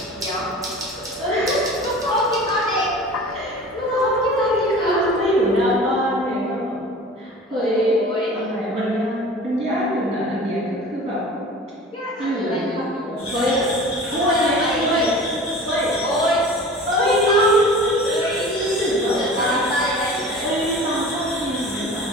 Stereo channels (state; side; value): normal; both; correlation 0.40